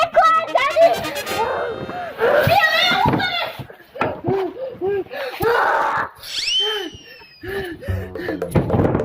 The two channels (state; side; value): identical; both; correlation 1.00